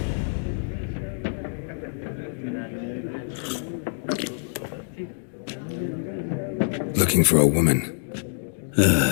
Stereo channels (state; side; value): silent; right; digital silence